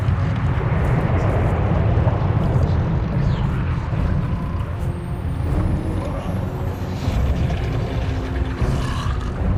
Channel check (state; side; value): identical; both; correlation 1.00